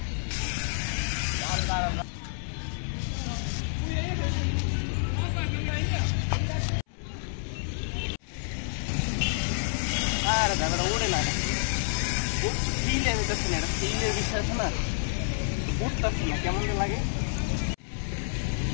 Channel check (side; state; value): right; silent; 59 dB below the other